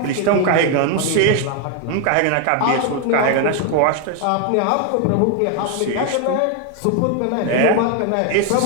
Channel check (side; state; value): both; different; correlation 0.01